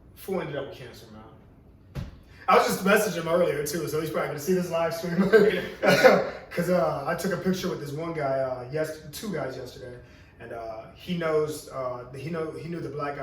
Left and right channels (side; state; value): both; identical; correlation 1.00